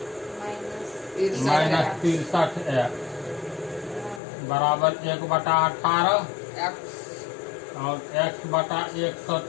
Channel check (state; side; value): drops out; right; at 4.2 s